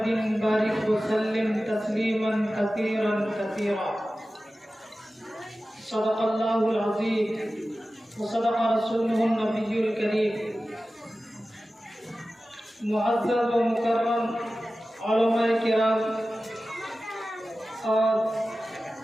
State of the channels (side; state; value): both; normal; correlation 0.95